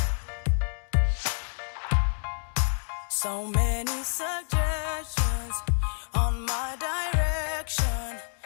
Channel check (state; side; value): silent; right; digital silence